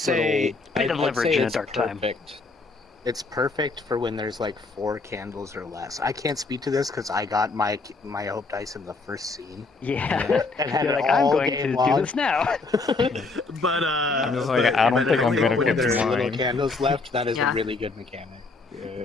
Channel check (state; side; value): quieter; right; 3.8 dB